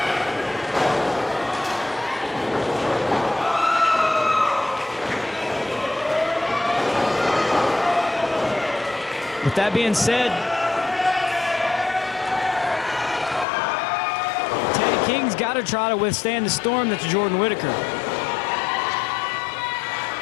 With that being said, Teddy King's got to try to withstand the storm that's Jordan Whittaker.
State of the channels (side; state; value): right; drops out; at 13.5 s